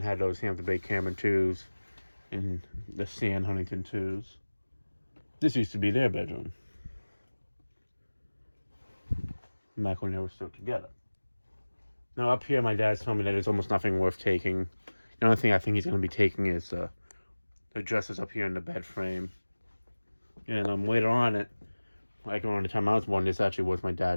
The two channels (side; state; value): both; inverted; correlation -1.00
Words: had those Hampton Bay Cameron 2s and the Stan Huntington 2s. This used to be their bedroom. Back when they were still together. Now up here, my dad's told me that there's almost nothing worth taking. The only thing I think he's going to be taking is the dresses up here in the bed frame. And later on, like around the time I was born, this actually was my